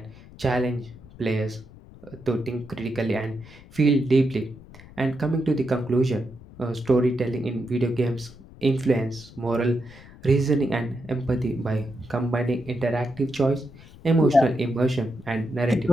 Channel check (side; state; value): left; noise; rumble, 20 dB below the sound